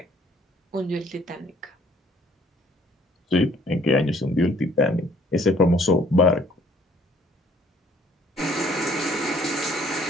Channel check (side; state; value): both; normal; correlation 0.59